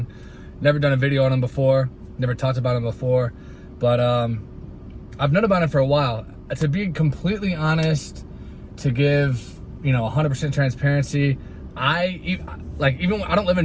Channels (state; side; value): identical; both; correlation 1.00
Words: Never done a video on him before. Never talked about him before. But I've known about him for a while. To be completely honest, to give, 100% transparency, I don't live in